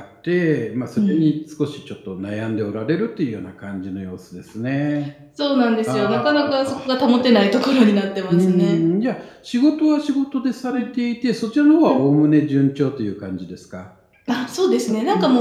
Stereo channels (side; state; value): both; identical; correlation 1.00